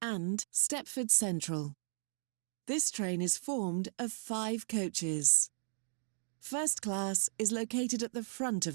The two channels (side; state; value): left; silent; digital silence